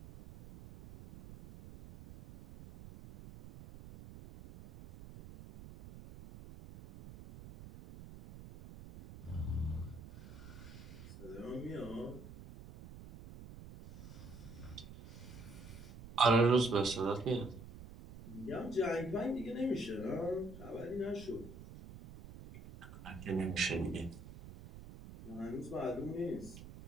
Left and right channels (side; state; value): right; noise; rumble, 14 dB below the sound